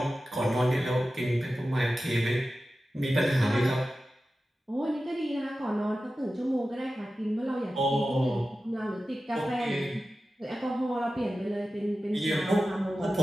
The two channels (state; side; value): normal; both; correlation 0.94